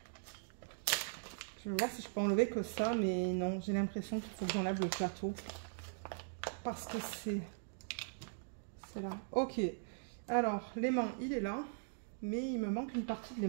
Je vais voir si je peux enlever que ça, mais non, j'ai l'impression qu'il faut que j'enlève le plateau. Parce que c'est là. Ok. Alors, l'aimant, il est là. Mais il me manque une partie de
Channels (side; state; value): left; silent; digital silence